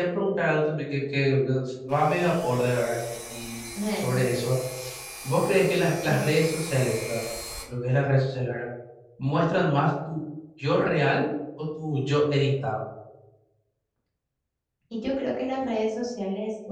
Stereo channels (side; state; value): both; identical; correlation 1.00